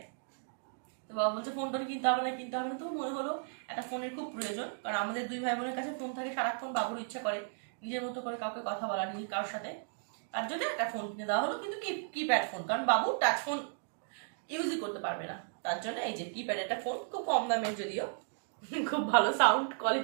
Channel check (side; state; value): left; silent; digital silence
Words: তো বাবা বলছে ফোন টোন কিনতে হবে না, কিনতে হবে না। তো মনে হলো একটা ফোনের খুব প্রয়োজন, কারণ আমাদের 2 ভাই বোনের কাছে ফোন থাকে সারাক্ষণ, বাবুর ইচ্ছা করে নিজের মতো করে কাউকে কথা বলা, নিজের কারোর সাথে, তার জন্য একটা ফোন কিনে দেওয়া হলো, কিন্তু কিপ্যাড ফোন, কারণ বাবু টাচ ফোন ইউজই করতে পারবে না, তার জন্য এই যে কিপ্যাড একটা ফোন, খুব কম দামের যদিও, খুব ভালো সাউন্ড